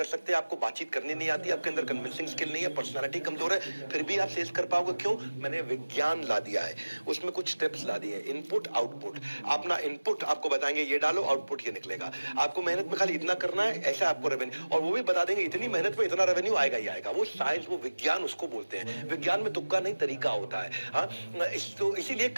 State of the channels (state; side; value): inverted; both; correlation -1.00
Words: सकते, आपको बातचीत करनी नहीं आती, आपके अंदर कन्विंसिंग स्किल नहीं है, पर्सनालिटी कमजोर है, फिर भी आप सेल्स कर पाओगे। क्यों? मैंने विज्ञान ला दिया है, उसमें कुछ स्टेप्स ला दिए, इनपुट आउटपुट। अपना इनपुट आपको बताएंगे ये डालो, आउटपुट ये निकलेगा। आपको मेहनत में खाली इतना करना है, ऐसा आपको रेवेन्यू, और वो भी बता देंगे इतनी मेहनत में इतना रेवेन्यू आएगा ही आएगा। वो साइंस, वो विज्ञान उसको बोलते हैं। विज्ञान में तुक्का नहीं, तरीका होता है। हाँ, तो इसीलिए